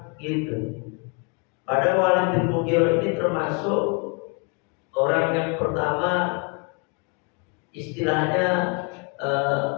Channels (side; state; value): right; quieter; 33.5 dB